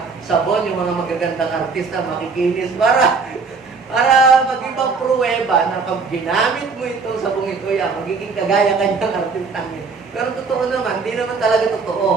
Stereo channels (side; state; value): left; quieter; 4.7 dB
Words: sabon, yung mga magagandang artista, makikinis para mag-ibang pruweba na pag ginamit mo itong sabong ito, magiging kagaya kanyang artistang yun. Pero totoo naman, hindi naman talaga